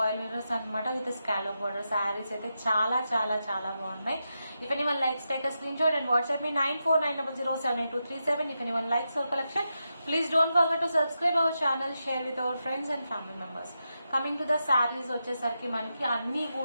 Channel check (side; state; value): both; inverted; correlation -0.87